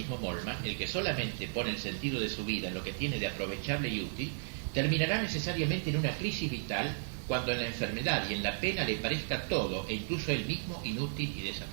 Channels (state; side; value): silent; left; digital silence